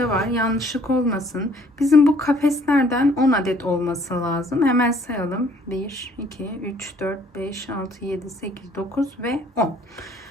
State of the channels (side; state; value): both; normal; correlation 0.60